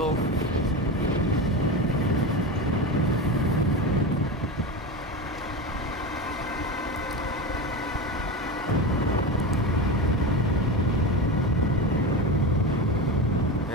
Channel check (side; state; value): both; normal; correlation 0.22